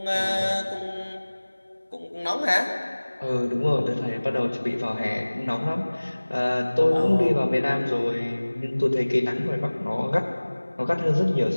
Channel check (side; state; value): both; inverted; correlation -1.00